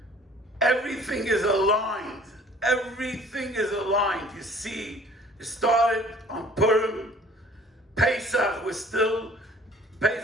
everything is aligned. Everything is aligned. You see, it started on Purim, Pesach, we're still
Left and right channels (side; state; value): both; normal; correlation 0.52